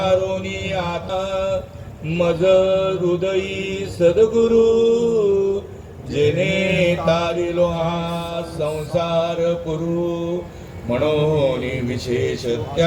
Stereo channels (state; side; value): identical; both; correlation 1.00